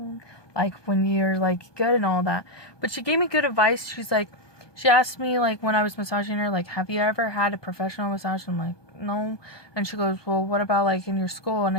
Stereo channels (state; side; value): late; right; 1.2 ms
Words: When you're, good and all that. But she gave me good advice. She's like, she asked me, when I was massaging her, have you ever had a professional massage? I'm like, no. And she goes, well, what about, in your school? And